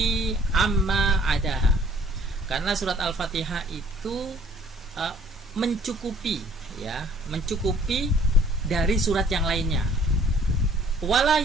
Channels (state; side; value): normal; both; correlation 0.57